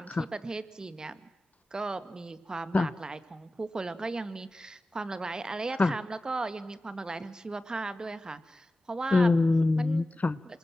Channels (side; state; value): both; normal; correlation 0.94